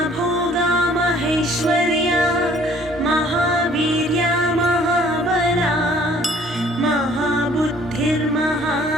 महेश्वर्या महावीर्या महाबला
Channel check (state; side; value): normal; both; correlation 0.57